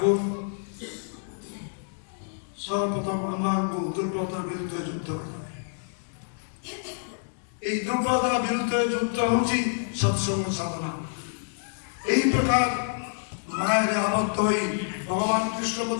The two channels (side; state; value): right; silent; digital silence